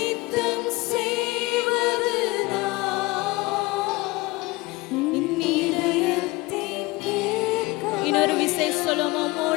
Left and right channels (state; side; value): quieter; right; 22.1 dB